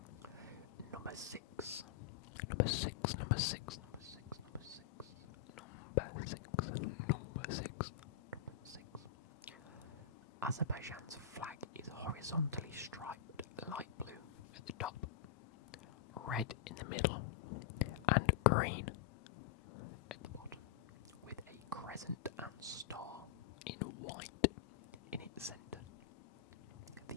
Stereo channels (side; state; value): right; quieter; 9.7 dB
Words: Number 6. Azerbaijan's flag is horizontally striped light blue at the top, red in the middle, and green at the bottom, with a crescent and star in white in its centre.